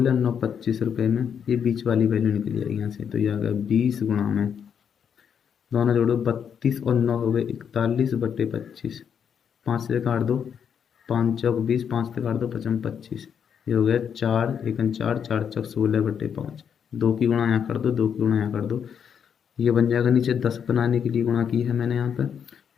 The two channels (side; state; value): right; quieter; 7.7 dB